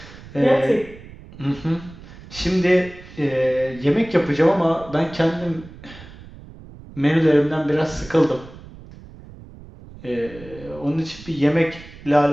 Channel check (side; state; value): right; noise; rumble, 18 dB below the sound